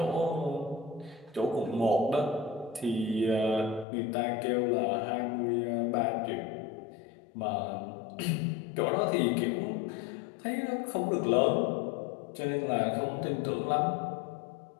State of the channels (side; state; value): right; drops out; at 3.9 s